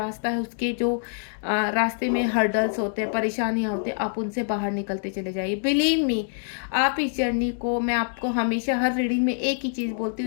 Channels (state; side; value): silent; right; digital silence